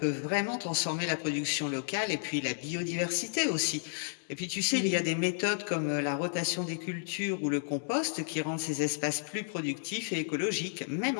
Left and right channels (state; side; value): silent; right; 56 dB below the other